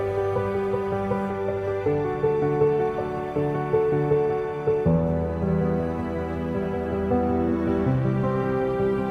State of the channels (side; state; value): both; identical; correlation 1.00